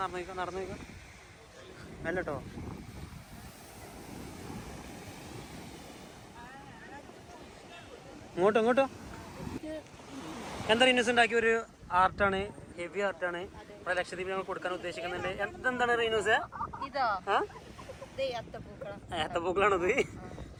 നടന്നു അല്ലട്ടോ ഇങ്ങോട്ടോ എന്താ റീനസ് ഉണ്ടാക്കിയ ഒരു ആർട്ടാണ്, ഹെവി ആർട്ടാണ്. ഇവിടെ ലക്ഷദ്വീപിൽ ഞങ്ങൾ കൊടുക്കാൻ ഉദ്ദേശിക്കുന്നുണ്ട്. എന്താണ് റീനൂസ്? ഇതോ ഏത്തപ്പൂക്കളാണത്.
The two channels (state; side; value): identical; both; correlation 1.00